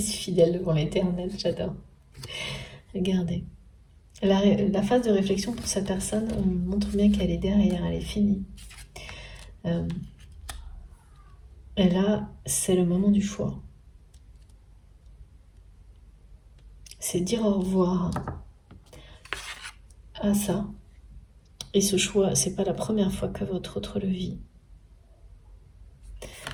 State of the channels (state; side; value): identical; both; correlation 1.00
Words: fidèle devant l'éternel, j'adore. Regardez. La phase de réflexion pour cette personne, on montre bien qu'elle est derrière, elle est finie. Et là, c'est le moment du choix. C'est dire au revoir à ça. Et ce choix, c'est pas la première fois que votre autre le vit.